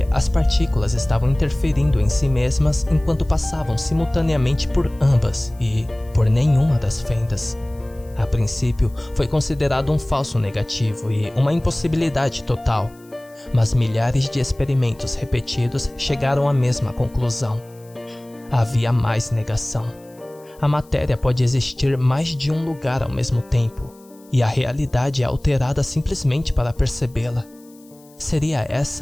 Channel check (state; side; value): noise; left; hiss, 28 dB below the sound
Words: as partículas estavam interferindo em si mesmas enquanto passavam simultaneamente por ambas e por nenhuma das fendas. A princípio, foi considerado um falso negativo e uma impossibilidade total, mas milhares de experimentos repetidos chegaram à mesma conclusão. Havia mais negação. A matéria pode existir mais de um lugar ao mesmo tempo, e a realidade é alterada simplesmente para percebê-la. Seria